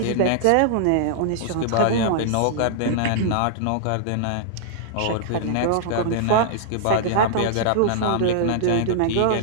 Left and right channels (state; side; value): different; both; correlation -0.01